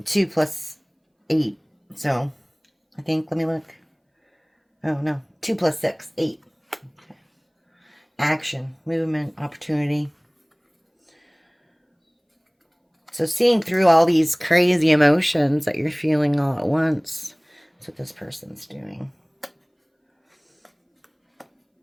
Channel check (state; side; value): identical; both; correlation 1.00